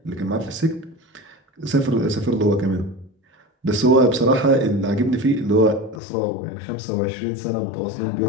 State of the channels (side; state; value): right; drops out; at 6.0 s